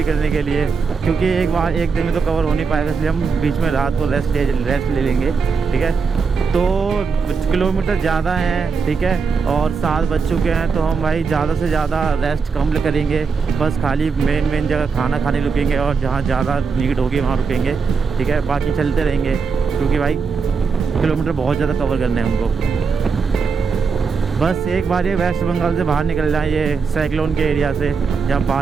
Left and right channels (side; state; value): left; quieter; 5.2 dB